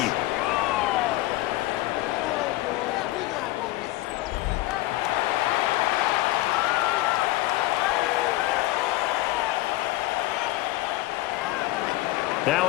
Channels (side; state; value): right; quieter; 17.7 dB